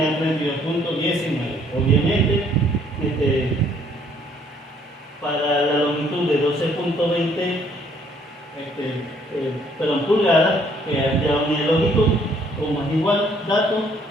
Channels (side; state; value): both; normal; correlation 0.64